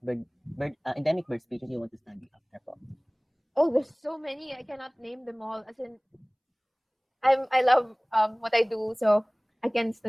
endemic bird species you want to study after po? Oh, there's so many. I cannot name them all. As in, I love what I do, so I can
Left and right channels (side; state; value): both; identical; correlation 1.00